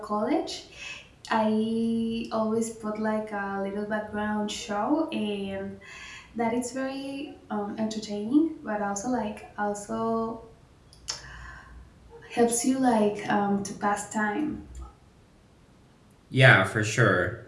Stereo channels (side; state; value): both; identical; correlation 1.00